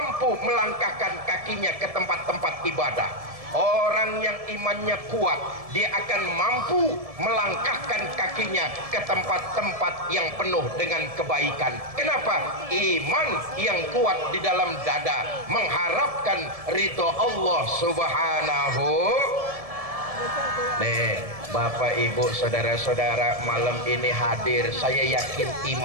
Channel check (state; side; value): late; left; 1.7 ms